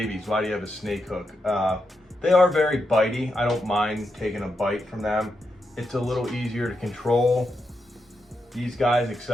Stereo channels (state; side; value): normal; both; correlation 0.85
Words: why do you have a snake hook? They are very bitey. I don't mind taking a bite from them. It's a little easier to control. These guys,